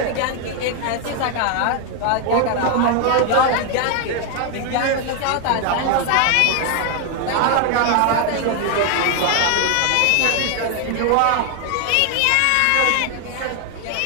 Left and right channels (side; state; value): both; different; correlation 0.01